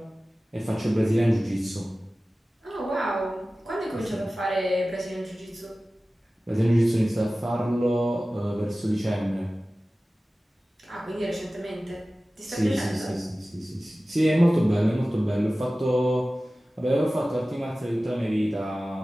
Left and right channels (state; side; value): normal; both; correlation 0.96